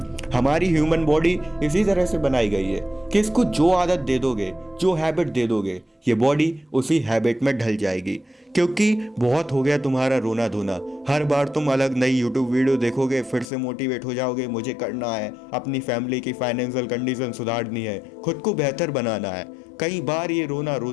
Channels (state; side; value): drops out; right; at 13.5 s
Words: हमारी ह्यूमन बॉडी इसी तरह से बनाई गई है कि इसको जो आदत दे दोगे, जो हैबिट दे दोगे, ये बॉडी उसी हैबिट में ढल जाएगी। क्योंकि बहुत हो गया तुम्हारा रोना धोना, हर बार तुम अलग नई यूट्यूब वीडियो देखोगे, फिर से मोटिवेट हो जाओगे, मुझे करना है, अपनी फैमिली की फाइनेंशियल कंडीशन सुधारनी है, खुद को बेहतर बनाना है। कई बार ये रोना